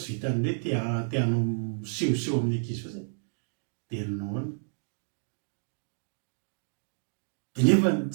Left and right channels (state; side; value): silent; left; digital silence